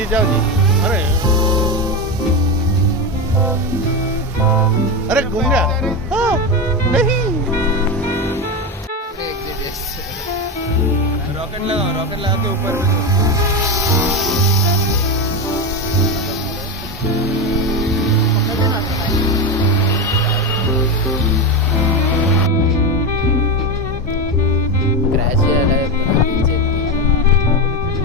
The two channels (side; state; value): both; normal; correlation 0.15